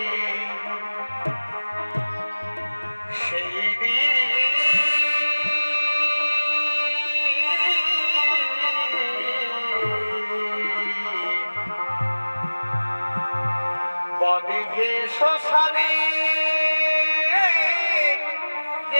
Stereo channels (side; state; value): both; inverted; correlation -1.00